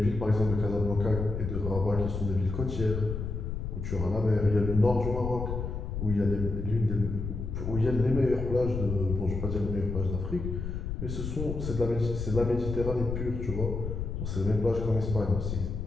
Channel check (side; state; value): left; noise; rumble, 4 dB below the sound